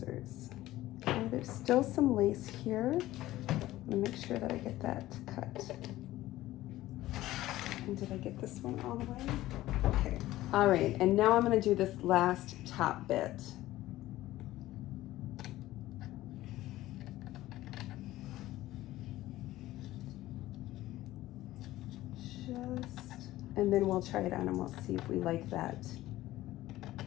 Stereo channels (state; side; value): quieter; right; 15.9 dB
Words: Okay, there's still some lace here. I'm gonna make sure that I get that cut. And did I get this one all the way? Okay. All right, and now I'm gonna do this last top bit. And then we'll try it on and we'll see if we like that.